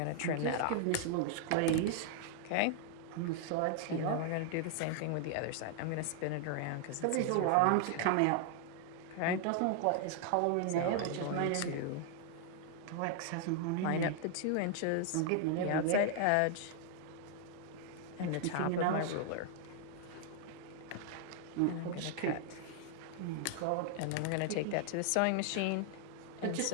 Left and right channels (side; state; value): both; different; correlation 0.00